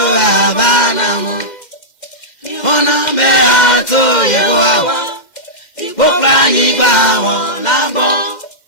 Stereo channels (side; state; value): right; late; 2.1 ms